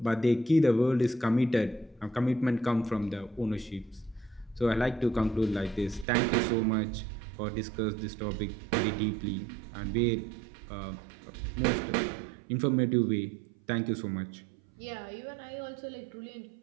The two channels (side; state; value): left; drops out; at 6.1 s